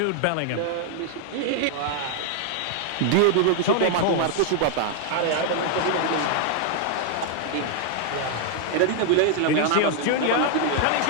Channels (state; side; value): different; both; correlation 0.00